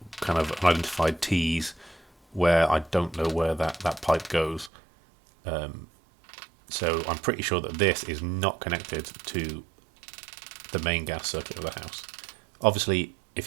kind of unidentified T's where I don't know where that pipe goes. So I'm pretty sure that this is not connected to the main gas circuit of the house. Obviously,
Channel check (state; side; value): drops out; left; at 4.7 s